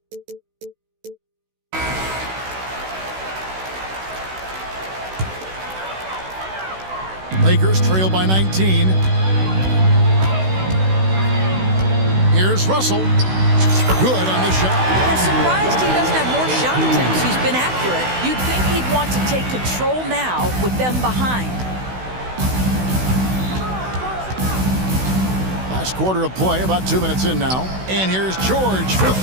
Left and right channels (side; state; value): left; late; 16 ms